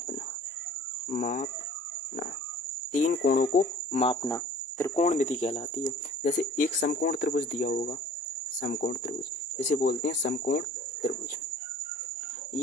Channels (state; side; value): normal; both; correlation 0.49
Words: तीन कोणों को मापना त्रिकोणमिति कहलाती है। जैसे एक समकोण त्रिभुज दिया होगा, समकोण त्रिभुज इसे बोलते हैं समकोण त्रिभुज।